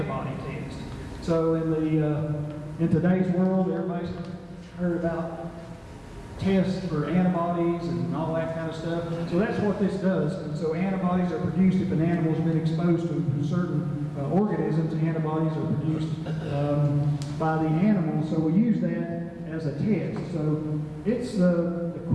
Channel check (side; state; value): both; identical; correlation 1.00